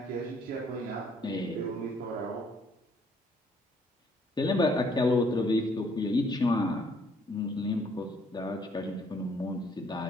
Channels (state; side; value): normal; both; correlation 0.65